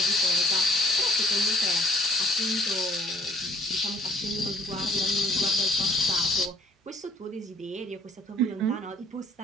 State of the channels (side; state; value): both; normal; correlation 0.58